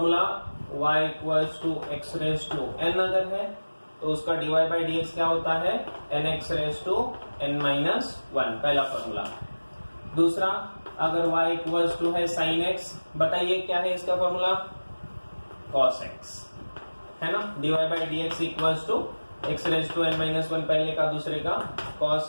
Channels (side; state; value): both; inverted; correlation -1.00